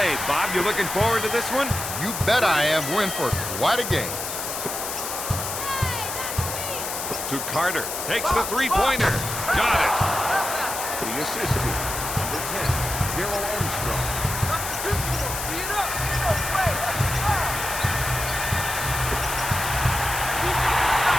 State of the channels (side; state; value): left; noise; hiss, 5 dB below the sound